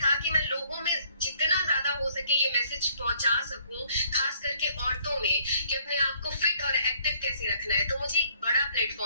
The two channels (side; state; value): both; inverted; correlation -0.65